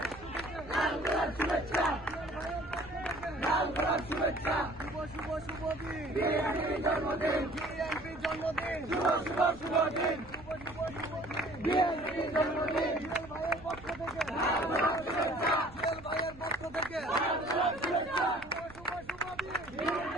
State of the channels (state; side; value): noise; right; rumble, 19 dB below the sound